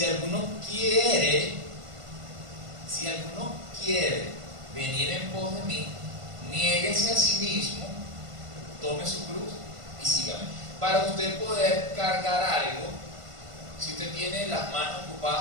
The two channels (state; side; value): late; left; 1.5 ms